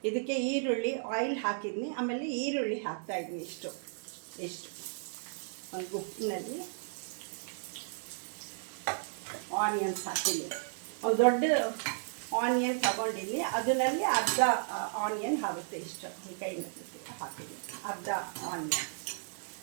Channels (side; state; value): left; silent; digital silence